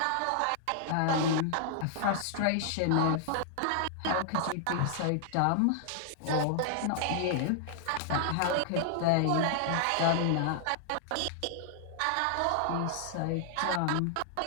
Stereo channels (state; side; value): different; both; correlation -0.01